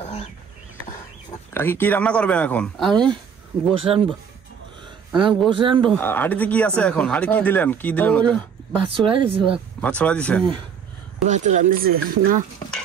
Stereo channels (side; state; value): left; quieter; 7.1 dB